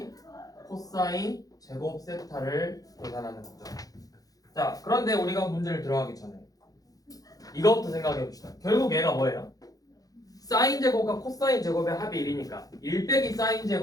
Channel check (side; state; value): right; late; 0.18 ms